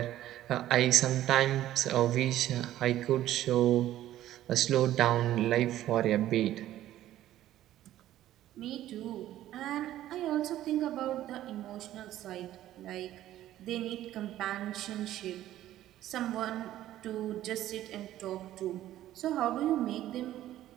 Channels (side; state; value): left; quieter; 13.4 dB